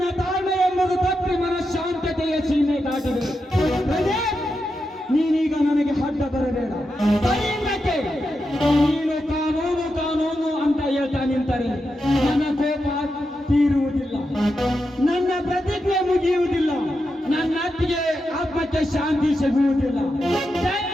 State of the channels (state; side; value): normal; both; correlation 0.87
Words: ತಾಳ್ಮೆ ಎಂಬುದು ತಪ್ಪಿ ಮನಃಶಾಂತತೆಯ ಸೀಮೆ ದಾಟಿದೆ. ನೀನೀಗ ನನಗೆ ಅಡ್ಡ ಬರಬೇಡ. ಕೈಯಿಂದಕ್ಕೆ ನೀನು ಕಾನೂನು ಅಂತ ಹೇಳ್ತಾ ನಿಂತರೆ ನನ್ನ ಕೋಪ ತೀರುವುದಿಲ್ಲ, ನನ್ನ ಪ್ರತಿಜ್ಞೆ ಮುಗಿಯುವುದಿಲ್ಲ, ನನ್ನ ಅತ್ತಿಗೆ ಆತ್ಮಕ್ಕೆ ಶಾಂತಿ ಸಿಗುವುದಿಲ್ಲ.